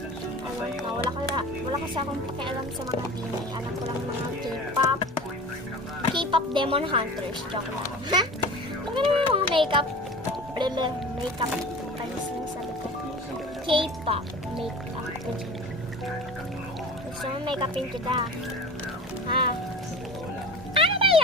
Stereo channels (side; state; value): both; normal; correlation 0.36